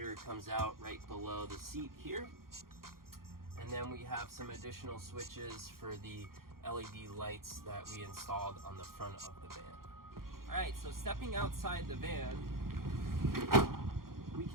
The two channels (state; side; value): late; left; 0.92 ms